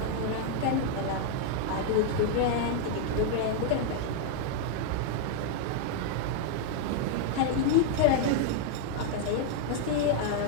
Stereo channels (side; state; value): both; different; correlation 0.00